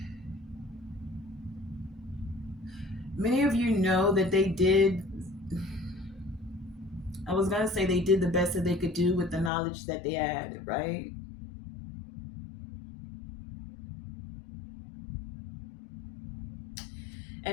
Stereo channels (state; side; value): drops out; right; at 9.5 s